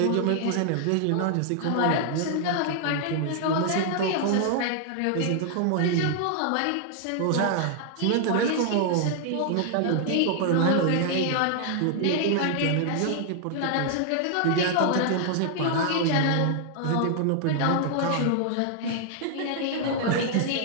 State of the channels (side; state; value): both; different; correlation 0.00